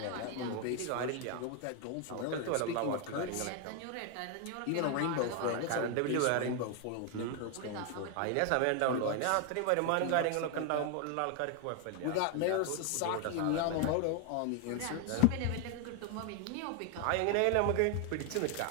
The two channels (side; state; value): both; different; correlation 0.01